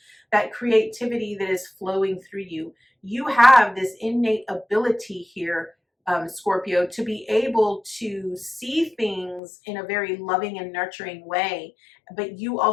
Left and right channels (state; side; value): drops out; right; at 9.4 s